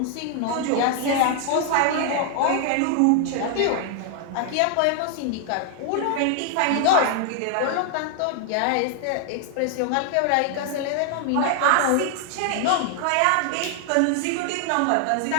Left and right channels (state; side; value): different; both; correlation 0.00